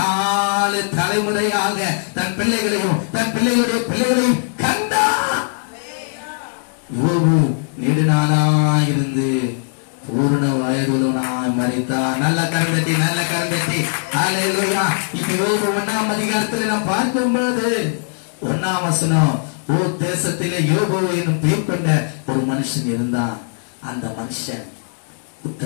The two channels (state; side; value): silent; right; digital silence